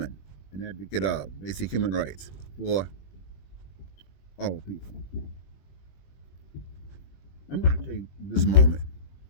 and advocate of basic human rights for all people. I'm going to take this moment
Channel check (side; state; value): right; late; 21 ms